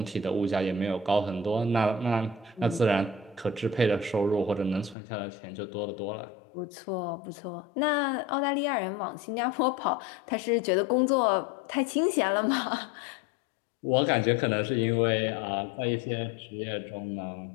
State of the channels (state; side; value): drops out; right; at 5.0 s